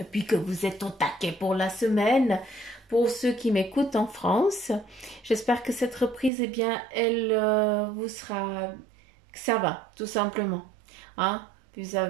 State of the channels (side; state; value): left; drops out; at 6.3 s